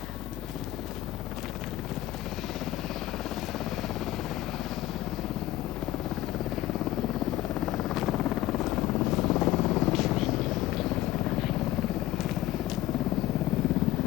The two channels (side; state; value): right; quieter; 14.9 dB